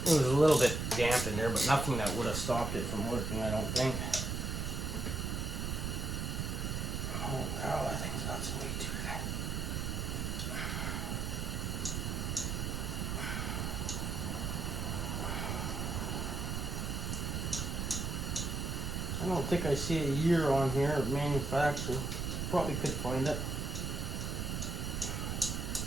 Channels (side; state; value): right; noise; rumble, 1 dB below the sound